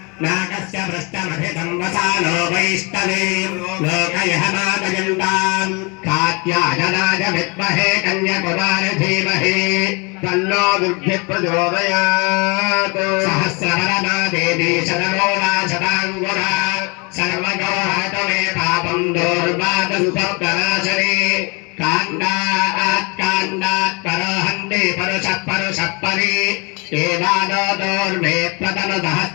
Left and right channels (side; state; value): right; quieter; 30.0 dB